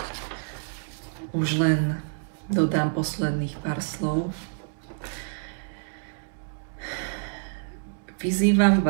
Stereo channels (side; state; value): left; silent; digital silence